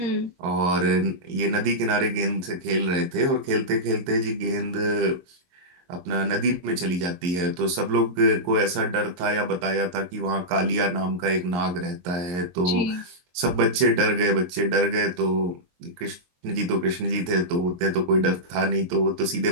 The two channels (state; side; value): late; left; 23 ms